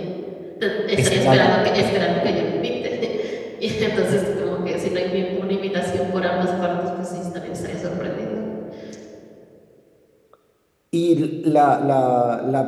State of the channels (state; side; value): identical; both; correlation 1.00